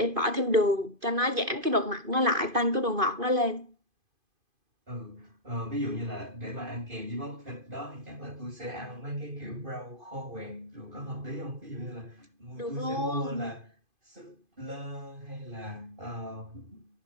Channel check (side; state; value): left; late; 2.5 ms